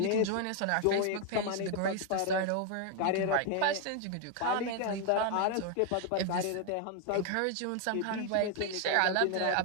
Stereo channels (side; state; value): both; different; correlation 0.01